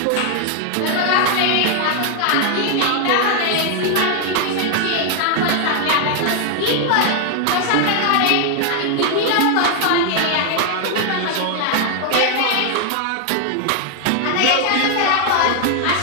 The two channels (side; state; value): both; different; correlation 0.00